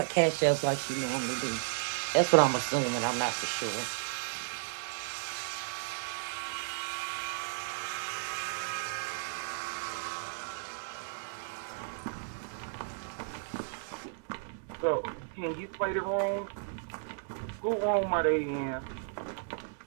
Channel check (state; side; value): silent; left; digital silence